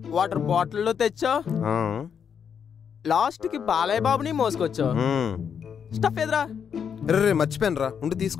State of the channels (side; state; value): right; quieter; 7.4 dB